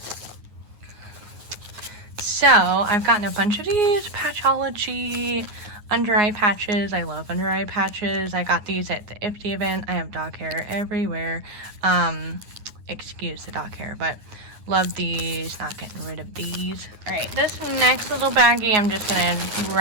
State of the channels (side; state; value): left; late; 9.5 ms